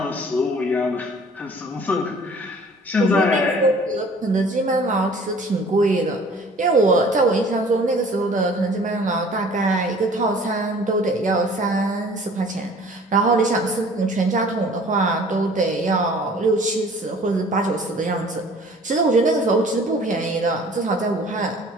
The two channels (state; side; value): normal; both; correlation 0.50